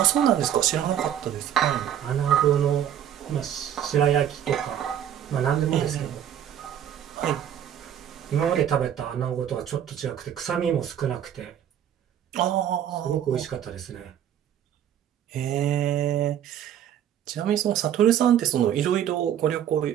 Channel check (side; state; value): left; quieter; 10.1 dB